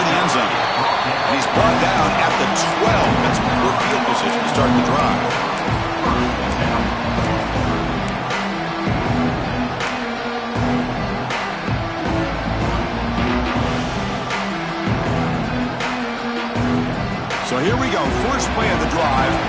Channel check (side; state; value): both; identical; correlation 1.00